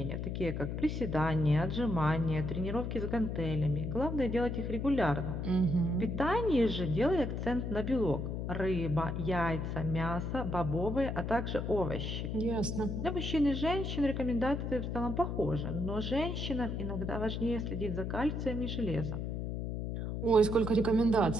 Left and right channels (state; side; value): noise; left; hum, 3 dB below the sound